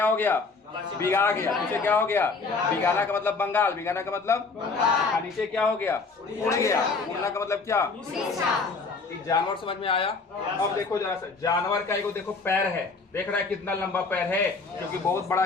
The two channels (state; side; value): quieter; right; 4.2 dB